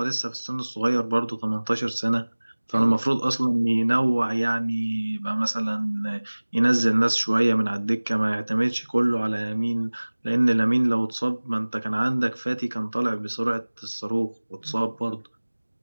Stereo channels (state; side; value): inverted; both; correlation -1.00